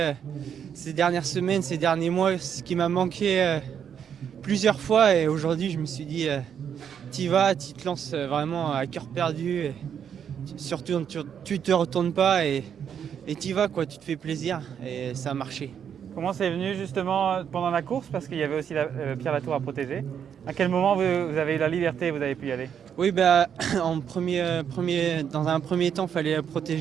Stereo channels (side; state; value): left; quieter; 8.2 dB